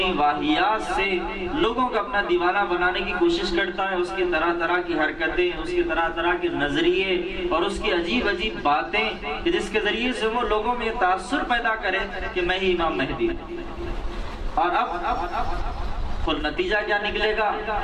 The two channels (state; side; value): identical; both; correlation 1.00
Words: واہیات سے لوگوں کو اپنا دیوانہ بنانے کی کوشش کرتا ہے. اس کی طرح طرح کی حرکتیں، اس کی طرح طرح کے نظریے اور اس کی عجیب عجیب باتیں کہ جس کے ذریعے سے وہ لوگوں میں تاثر پیدا کرے کہ میں ہی امام مہدی ہوں. اور اب اور نتیجہ کیا نکلے گا